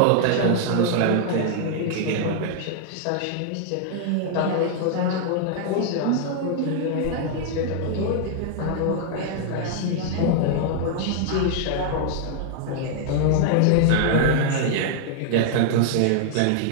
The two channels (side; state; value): both; different; correlation 0.00